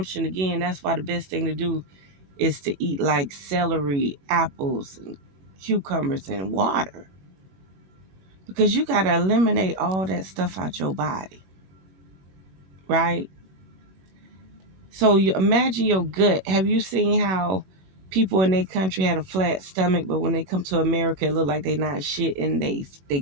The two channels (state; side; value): late; left; 21 ms